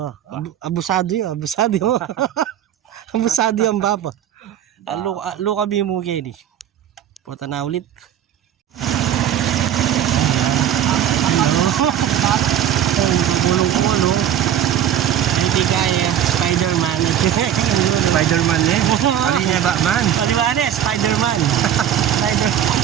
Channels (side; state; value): left; quieter; 10.3 dB